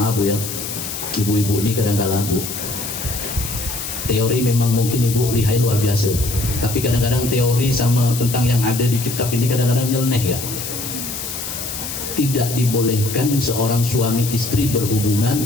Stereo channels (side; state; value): left; noise; hiss, 6 dB below the sound